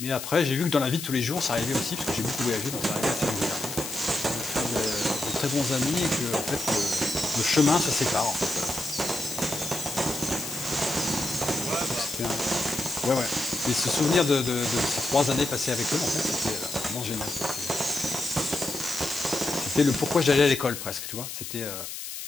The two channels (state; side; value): noise; left; hiss, 8 dB below the sound